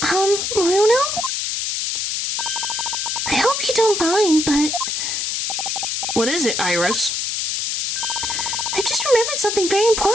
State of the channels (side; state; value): left; noise; hiss, 1 dB below the sound